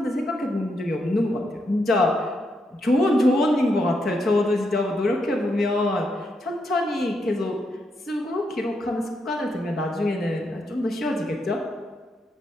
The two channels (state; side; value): normal; both; correlation 0.81